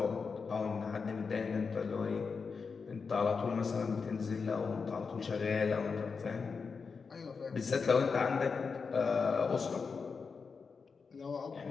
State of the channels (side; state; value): right; quieter; 5.2 dB